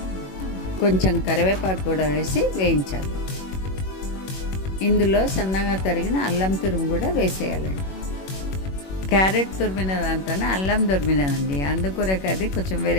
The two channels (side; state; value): right; late; 21 ms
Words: కొంచెం కరివేపాకు కూడా వేసి వేయించాలి. ఇందులో సన్నగా తరిగిన అల్లం తురుము కూడా వేసేయాలండి. క్యారెట్ తురిమిన దాంతోనే అల్లం తురిమినదండి, అందుకొరకు అది కొంచెం